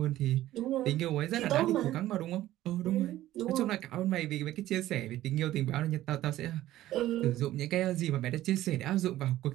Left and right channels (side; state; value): left; quieter; 14.6 dB